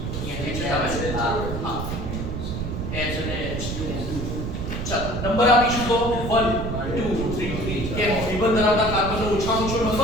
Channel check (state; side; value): noise; right; rumble, 4 dB below the sound